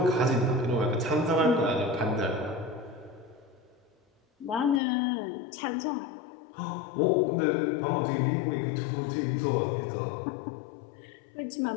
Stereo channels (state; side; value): drops out; right; at 4.8 s